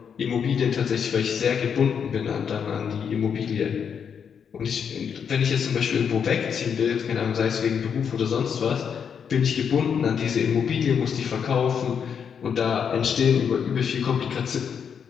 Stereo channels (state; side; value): quieter; right; 7.2 dB